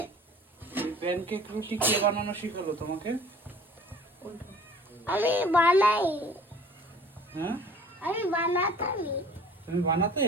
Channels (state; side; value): normal; both; correlation 0.49